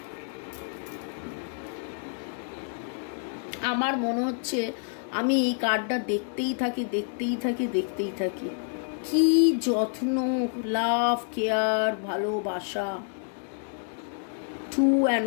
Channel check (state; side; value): silent; right; digital silence